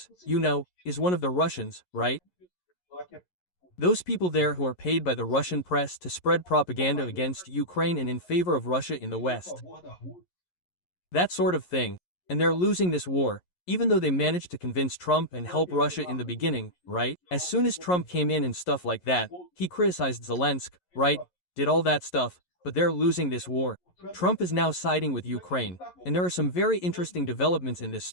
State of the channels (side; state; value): right; late; 11 ms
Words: you know, is one of the Russians, right? Those people there who are paid by the Russian press to spread propaganda against Ukraine and in favor of Russia in the West. That sort of thing. And they're losing this war, even though they managed to convince Trump and help Russia in the beginning, right? As soon as Trump came in and stuff like that, he criticized Zelensky, right? Did all that stuff, but they're losing this war. Trump is now siding with Ukraine, and there are some very interesting developments in this